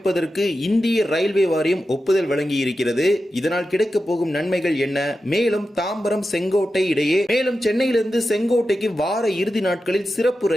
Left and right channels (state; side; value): normal; both; correlation 0.91